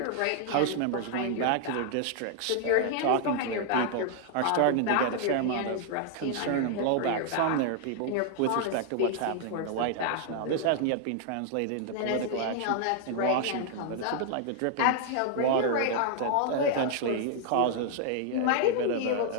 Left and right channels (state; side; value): different; both; correlation 0.00